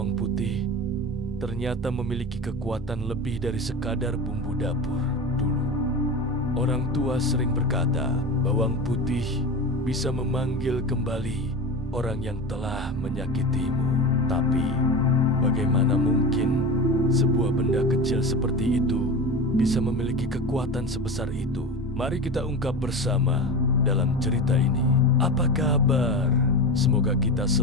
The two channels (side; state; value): both; normal; correlation 0.26